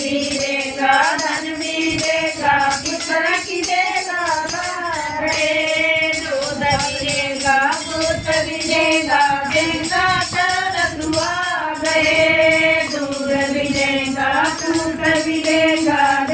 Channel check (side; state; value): both; identical; correlation 1.00